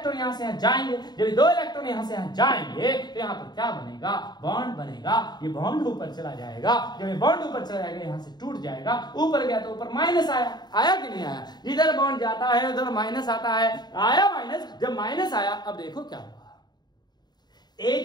यहाँ से यहाँ जाएंगे। जब ये 2 इलेक्ट्रॉन यहाँ से यहाँ जाएंगे तो यहाँ पर क्या बनेगा? बॉन्ड बनेगा। ये बॉन्ड ऊपर चला जाएगा। जब ये बॉन्ड ऊपर चला जाएगा यहाँ से टूट जाएगा। ऊपर गया तो ऊपर माइनस आया। आया कि नहीं आया? इधर बॉन्ड जाता है उधर माइनस आता है। आया माइनस। जब माइनस आया अब देखो क्या हुआ,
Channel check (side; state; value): right; late; 0.20 ms